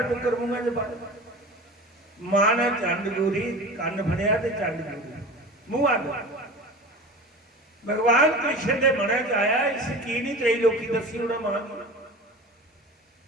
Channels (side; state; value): both; normal; correlation 0.35